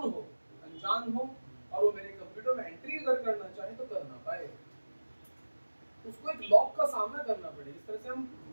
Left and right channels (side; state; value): both; inverted; correlation -1.00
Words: हो, अनजान हो, और वो मेरे कंप्यूटर में एंट्री अगर करना चाहे तो कर ना पाए, उसको एक लॉक का सामना करना पड़े। जिस तरह से हम